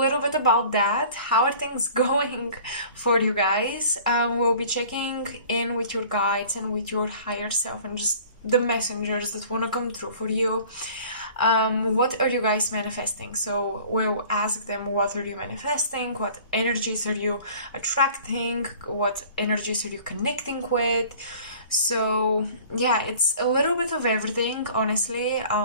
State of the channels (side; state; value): both; inverted; correlation -0.47